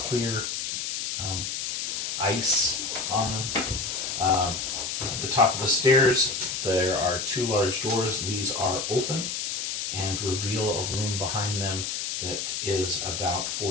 ice on them. At the top of the stairs, there are 2 large doors. These are open and reveal a room behind them that is about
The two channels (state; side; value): noise; left; hiss, 3 dB below the sound